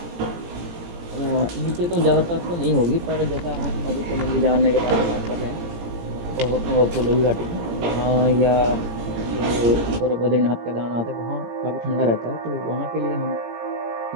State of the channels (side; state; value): left; late; 17 ms